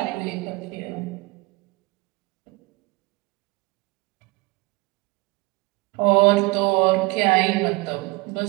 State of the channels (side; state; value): left; quieter; 25.1 dB